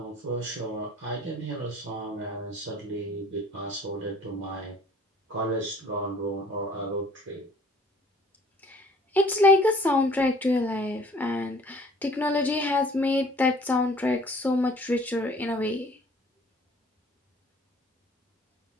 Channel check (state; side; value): normal; both; correlation 0.53